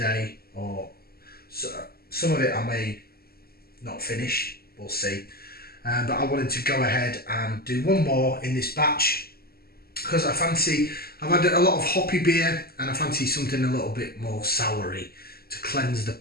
or so, some of it I may not finish, we'll see. But I wanted to go ahead and do one more in this batch, because I've had a lot of hoppy beer and I fancy something a little bit more soury to cleanse the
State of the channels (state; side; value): late; right; 0.45 ms